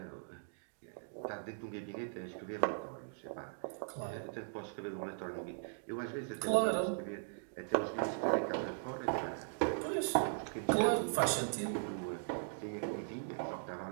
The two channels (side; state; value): left; silent; digital silence